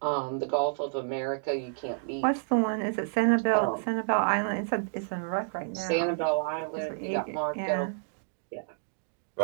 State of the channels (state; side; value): silent; left; 56 dB below the other